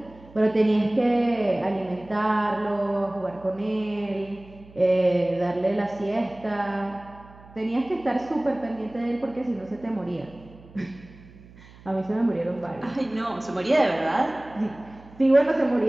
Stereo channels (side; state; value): right; noise; hum, 22 dB below the sound